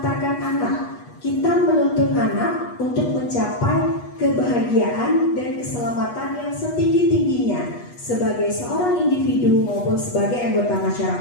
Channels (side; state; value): right; late; 8.3 ms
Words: anak. Kita menuntun anak untuk mencapai kebahagiaan dan keselamatan yang setinggi-tingginya sebagai seorang individu maupun sebagai anggota